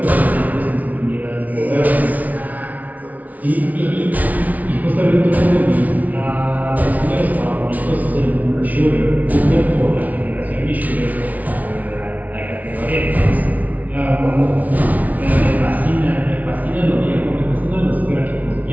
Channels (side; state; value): left; late; 0.073 ms